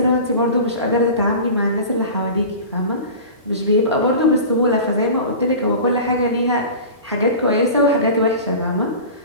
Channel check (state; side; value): inverted; both; correlation -0.35